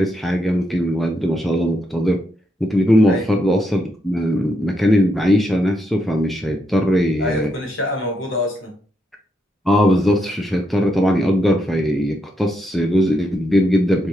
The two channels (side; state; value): both; normal; correlation 0.79